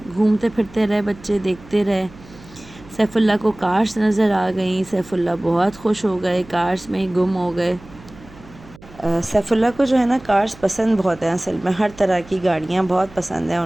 گھومتے پھرتے رہے بچے، دیکھتے رہے۔ سیف اللہ کو کارس نظر آ گئیں، سیف اللہ بہت خوش ہو گئے، کارس میں ہی گم ہو گئے۔ سیف اللہ کو جو ہے نا کارس پسند بہت ہیں، اصل میں ہر طرح کی گاڑیاں بہت پسند ہیں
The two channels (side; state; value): right; noise; hum, 22 dB below the sound